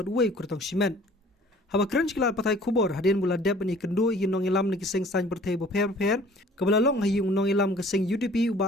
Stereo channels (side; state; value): both; normal; correlation 0.52